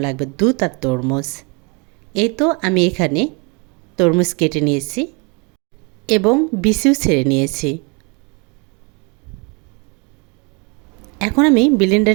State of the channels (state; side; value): quieter; left; 31.6 dB